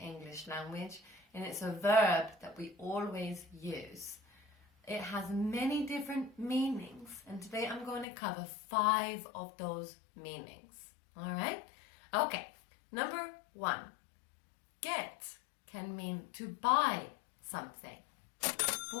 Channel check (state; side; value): drops out; right; at 8.1 s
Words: language and it's a verb that we always use. It has many different meanings and today I'm going to cover 5 of those meanings. Alright? Okay, number 1. Get can mean to buy something.